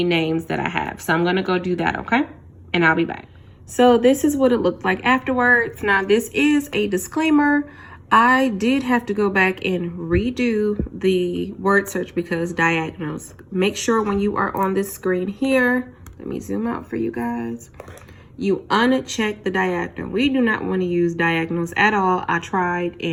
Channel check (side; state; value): both; identical; correlation 1.00